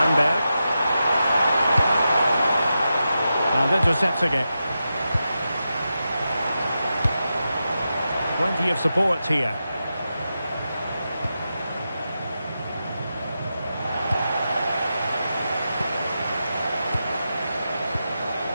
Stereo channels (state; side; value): inverted; both; correlation -0.89